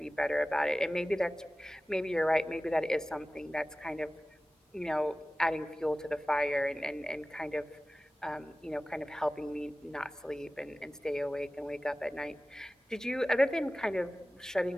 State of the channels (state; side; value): normal; both; correlation 0.97